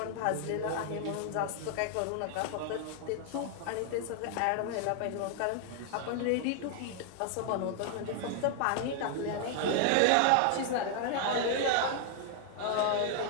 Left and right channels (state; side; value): different; both; correlation 0.00